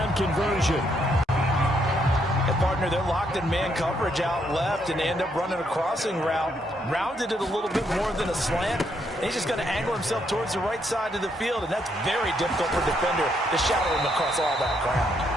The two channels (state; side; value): normal; both; correlation 0.74